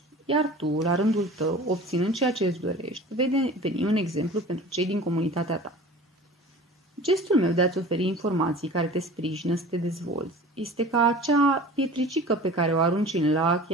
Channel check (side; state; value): both; normal; correlation 0.40